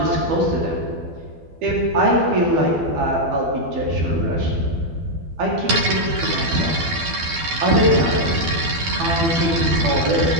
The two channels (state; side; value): late; left; 12 ms